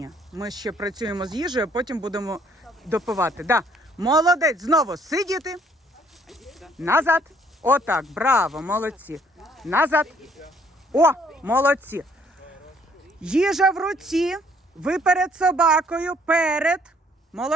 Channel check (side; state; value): both; normal; correlation 0.63